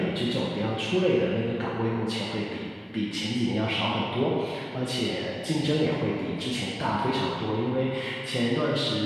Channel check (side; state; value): both; identical; correlation 1.00